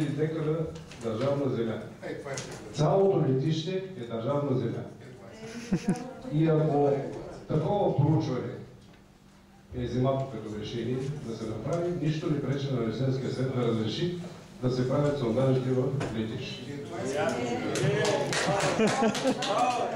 декара държавна земя. Цялото летище е държавна земя. И ако такова проучване е вземато като решение да се направи, нищо не пречи на Ресенския съвет да разреши да се правят сондажите в летище.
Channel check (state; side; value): identical; both; correlation 1.00